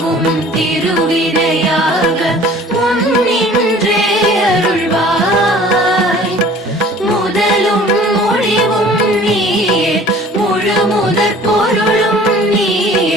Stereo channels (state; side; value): normal; both; correlation 0.49